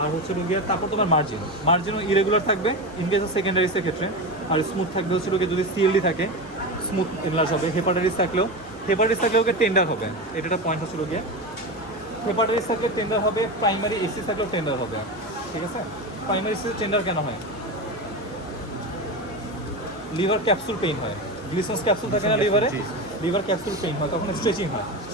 হচ্ছে রোগিয়ার তারপর তোমার মার্জিনও ইরেগুলার থাকবে ইন কেস অফ সেকেন্ডারিসের ক্ষেত্রে। আর স্মুথ থাকবে হচ্ছে রোগী যদি সিএলডি থাকে স্মুথ এনলার্জ হবে। হেপাটাইটিস থাকলেও ওকে টেন্ডার হবে, এটা একটা পয়েন্ট হচ্ছে রোগিয়া। হেপাটাইটিস থাকলে টেন্ডার হবে, প্রাইমারি এসি থাকলেও টেন্ডার হবে, ঠিক আছে। প্রাইমারি এসি টেন্ডার কেন হয়? লিভার ক্যাপসুল পেইন হয়, গ্লিসন্স ক্যাপসুল থাকে না লিভারে, লিভার ক্যাপসুল পেইন হয়, তখন স্ট্রেচিং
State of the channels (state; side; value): normal; both; correlation 0.21